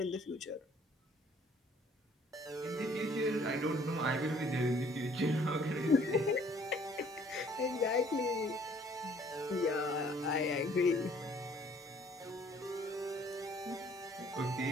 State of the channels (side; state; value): both; normal; correlation 0.59